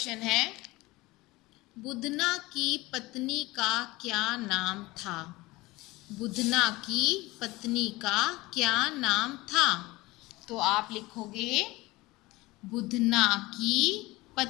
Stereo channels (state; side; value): quieter; right; 20.8 dB